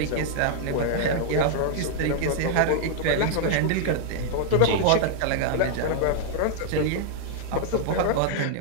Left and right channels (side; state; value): both; different; correlation -0.01